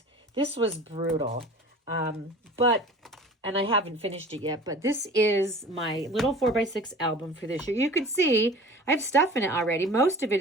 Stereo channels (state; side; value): normal; both; correlation 0.42